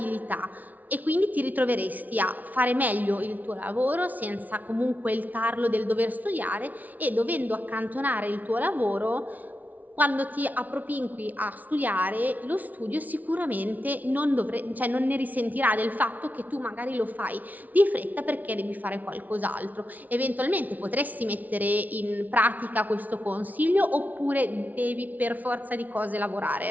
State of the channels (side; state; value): left; late; 0.077 ms